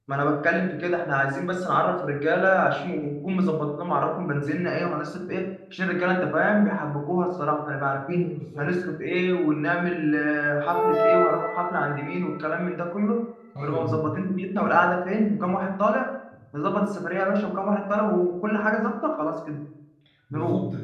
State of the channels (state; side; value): identical; both; correlation 1.00